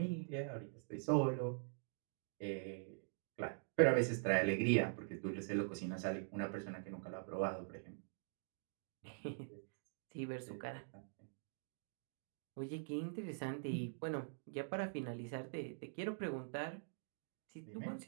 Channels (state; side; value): silent; left; digital silence